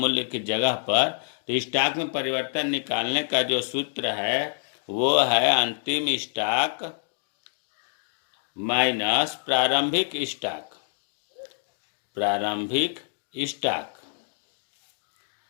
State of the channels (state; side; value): silent; right; digital silence